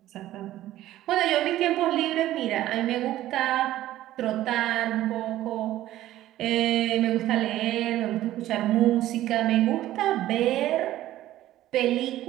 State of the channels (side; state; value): left; quieter; 14.2 dB